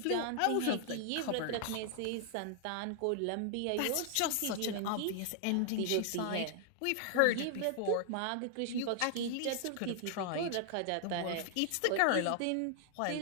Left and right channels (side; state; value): both; different; correlation 0.00